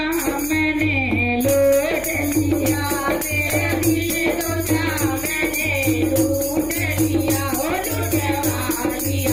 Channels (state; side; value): noise; left; hum, 15 dB below the sound